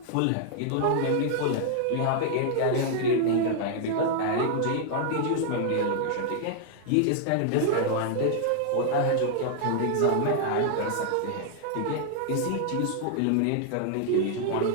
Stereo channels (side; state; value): both; different; correlation 0.00